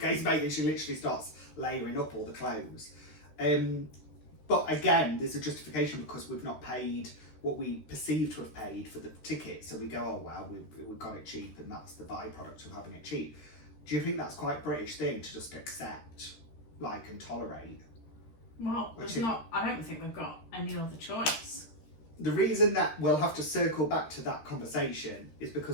mate, and she literally starts layering up all the clothes. But again, there's a justification because we've not paid what we perceive to have paid for the ticket. So we go, oh well, we got it cheap, and that's the byproduct of having it cheap. Do you think that's quite a British thing to just accept, like, and tolerate? Well, I don't think we've got any other choice. The reason that we'll have to circle back to that conversation is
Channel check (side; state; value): right; late; 13 ms